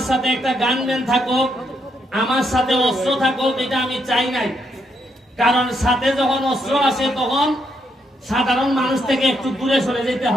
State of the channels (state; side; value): normal; both; correlation 0.77